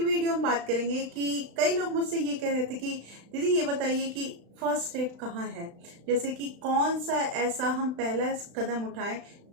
वीडियो हम बात करेंगे कि कई लोग मुझसे ये कह रहे थे कि दीदी ये बताइए कि फर्स्ट स्टेप कहाँ है, जैसे कि कौन सा ऐसा हम पहला कदम उठाएं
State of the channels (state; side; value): late; left; 35 ms